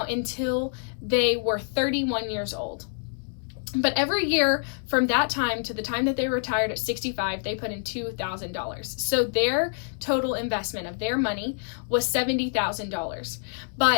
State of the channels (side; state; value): right; silent; digital silence